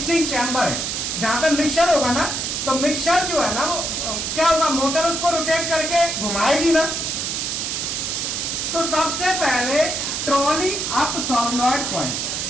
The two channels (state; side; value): noise; right; hiss, 2 dB below the sound